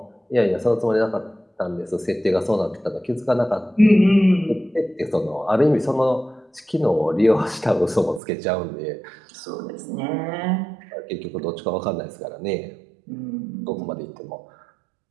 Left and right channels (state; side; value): drops out; left; at 8.2 s